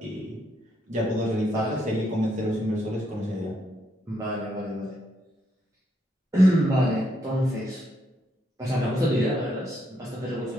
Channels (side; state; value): both; normal; correlation 0.76